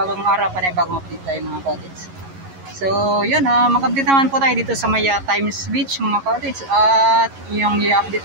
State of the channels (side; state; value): left; late; 11 ms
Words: araw, panibagong update tayo mga cottage. So, yun, mag-update naman po tayo dito sa Maya Times Beach mga cottage. At yung